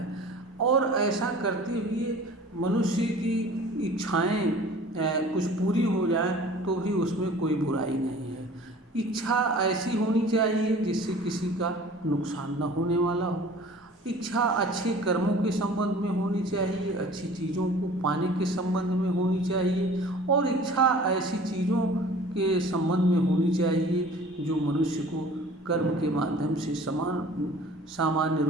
और ऐसा करते हुए मनुष्य की इच्छाएं कुछ पूरी हो जाए तो भी उसमें कोई बुराई नहीं है। इच्छा ऐसी होनी चाहिए जिससे किसी का नुकसान न होने वाला हो। इच्छा अच्छे कर्मों के संबंध में होनी चाहिए, अच्छी चीज़ों को पाने के संबंध में होनी चाहिए, और इच्छा ऐसी चीज़ों के संबंध में होनी चाहिए जो मनुष्य को कर्म के माध्यम से सामान्य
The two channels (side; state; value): both; normal; correlation 0.46